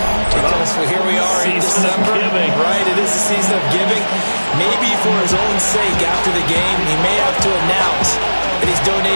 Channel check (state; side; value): inverted; both; correlation -1.00